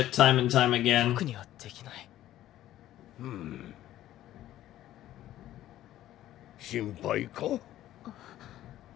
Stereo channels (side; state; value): right; quieter; 13.5 dB